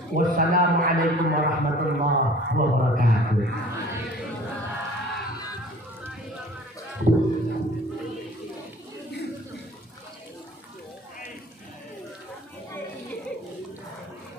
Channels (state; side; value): normal; both; correlation 0.48